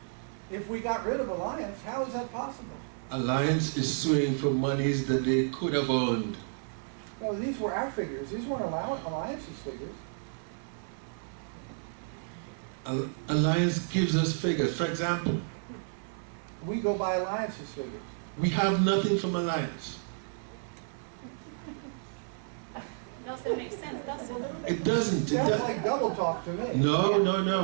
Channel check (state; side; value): silent; left; 57 dB below the other